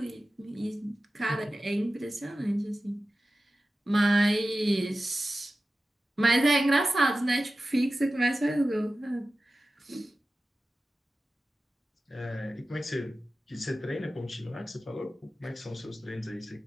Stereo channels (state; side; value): normal; both; correlation 0.95